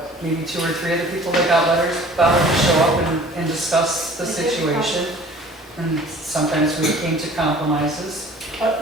maybe 2 or 3 other people that got letters bothered to show up and discuss the situation. And sometimes we came to compromises. But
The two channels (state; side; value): normal; both; correlation 0.48